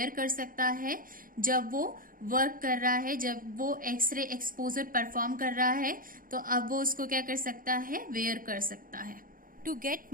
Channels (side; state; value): left; late; 0.40 ms